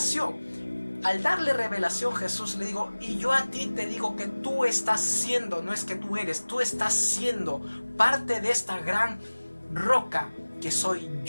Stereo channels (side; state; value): both; inverted; correlation -1.00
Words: Al darle revelación, Jesús le dijo, y yo a ti te digo que tú estás siendo, no es que tú eres, tú estás siendo parte de esta gran roca que soy